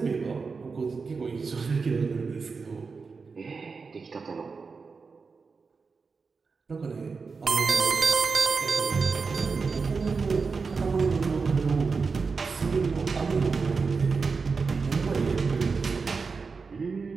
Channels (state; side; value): quieter; left; 4.8 dB